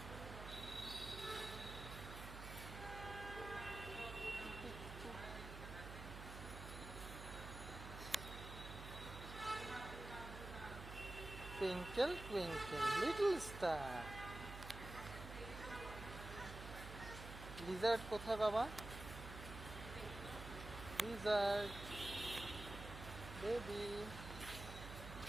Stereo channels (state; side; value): noise; right; hum, 9 dB below the sound